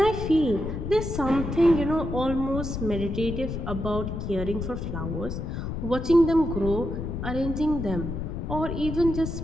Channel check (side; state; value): left; noise; rumble, 5 dB below the sound